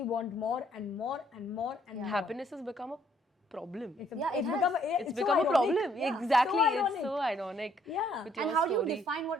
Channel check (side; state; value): both; normal; correlation 0.66